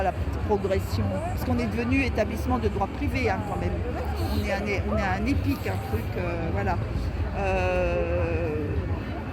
la petite progression. Parce qu'on est devenu établissement de droit privé hein, quand même. On est un EPIC, un truc, voilà.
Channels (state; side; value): identical; both; correlation 1.00